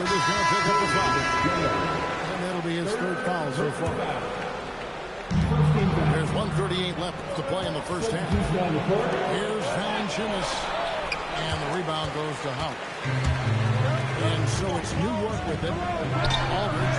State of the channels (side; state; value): both; identical; correlation 1.00